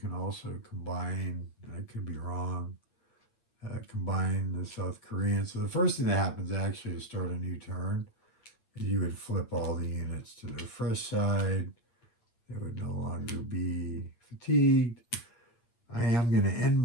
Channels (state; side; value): late; right; 8.5 ms